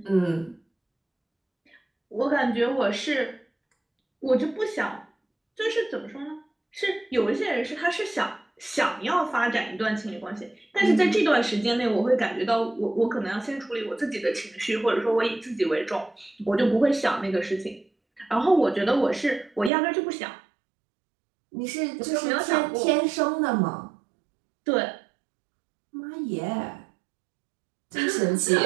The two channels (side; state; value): left; drops out; at 19.7 s